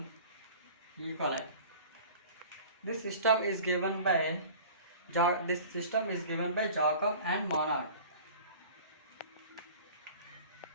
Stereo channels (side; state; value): both; inverted; correlation -0.43